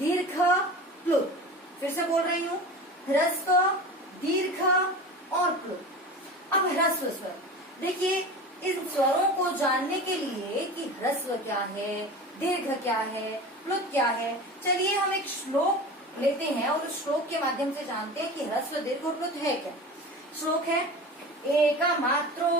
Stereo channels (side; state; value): both; normal; correlation 0.33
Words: प्लुत। फिर से बोल रही हूँ, ह्रस्व, दीर्घ और प्लुत। अब ह्रस्व स्वर, देखिए इन स्वरों को जानने के लिए कि ह्रस्व क्या है, दीर्घ क्या है, प्लुत क्या है, चलिए हम एक श्लोक लेते हैं और उस श्लोक के माध्यम से जानते हैं कि ह्रस्व, दीर्घ और प्लुत है क्या। श्लोक है, एकमात्रो